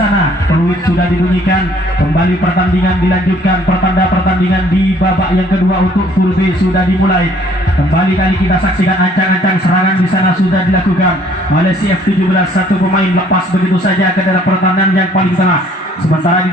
Peluit sudah dibunyikan. Kembali pertandingan dilanjutkan. Pertanda pertandingan di babak yang kedua untuk full B sudah dimulai. Kembali kali kita saksikan ancang-ancang serangan di sana sudah dilakukan oleh si F17. Satu pemain lepas begitu saja ke dalam pertahanan yang paling tengah. Sementara di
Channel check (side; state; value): both; normal; correlation 0.59